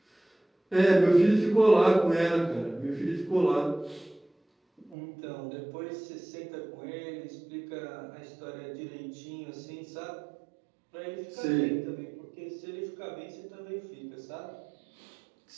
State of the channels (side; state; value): left; drops out; at 5.0 s